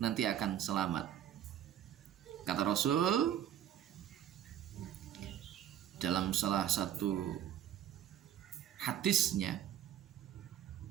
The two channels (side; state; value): left; quieter; 10.8 dB